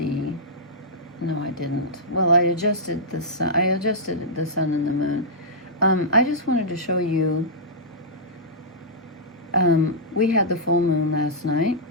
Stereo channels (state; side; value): normal; both; correlation -0.12